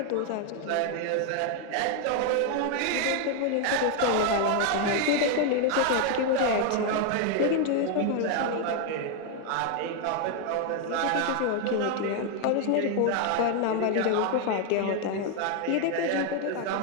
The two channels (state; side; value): different; both; correlation 0.01